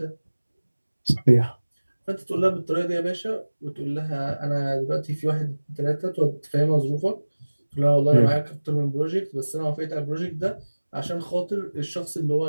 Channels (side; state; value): both; inverted; correlation -1.00